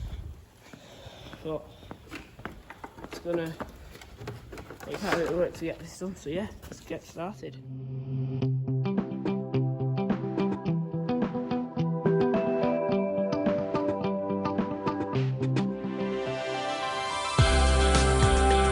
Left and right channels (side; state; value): both; identical; correlation 1.00